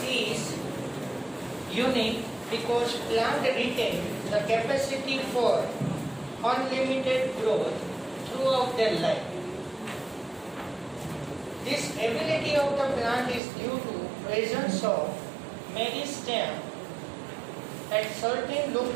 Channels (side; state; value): left; drops out; at 13.4 s